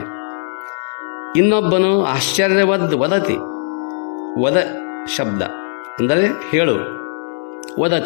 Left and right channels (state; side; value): silent; right; 67 dB below the other